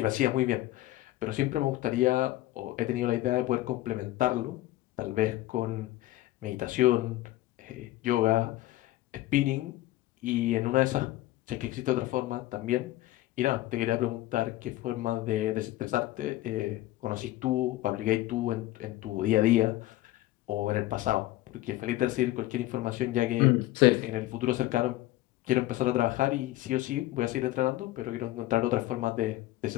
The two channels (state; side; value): quieter; right; 16.4 dB